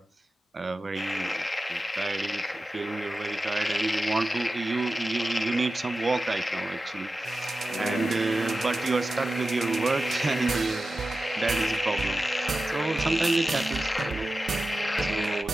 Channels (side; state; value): both; normal; correlation 0.93